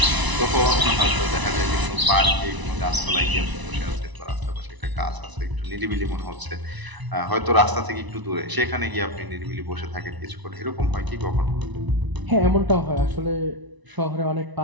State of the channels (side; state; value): left; late; 1.0 ms